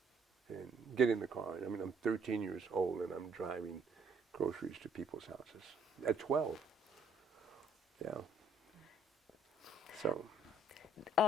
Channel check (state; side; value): normal; both; correlation 0.65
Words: and get in the car. I mean, I'm 13 years old and I'm driving groceries to people's houses at 12. Yeah. So.